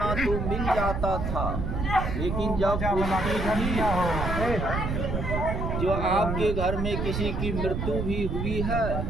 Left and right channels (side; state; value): right; noise; rumble, 2 dB below the sound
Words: तो मिल जाता था, लेकिन जब जो आपके घर में किसी की मृत्यु भी हुई है